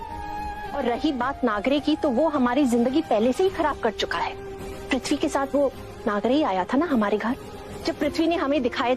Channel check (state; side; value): identical; both; correlation 1.00